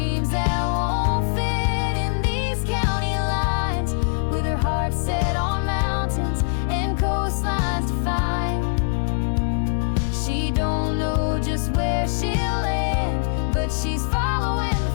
that won't fit in these county lines, with her heart set on mountains and coastlines to find. She don't know just where she'll land, but she's following the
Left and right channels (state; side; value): silent; right; 64 dB below the other